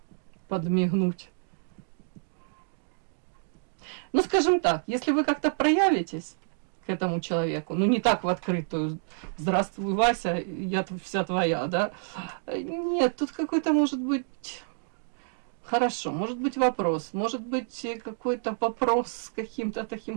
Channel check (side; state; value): left; silent; digital silence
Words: подмигнуть. Ну, скажем так, если вы как-то проявитесь к этому человеку, ну, не так в открытую: «Здравствуй, Вася, я вся твоя», да? Нет, тут какой-то, может быть, хорошо, может быть вопрос, может быть какой-то вопрос с каким-то